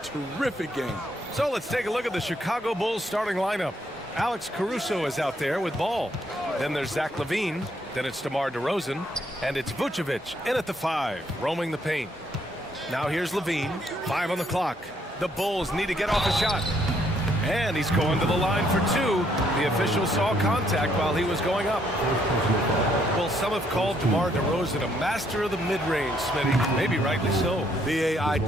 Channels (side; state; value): both; normal; correlation 0.70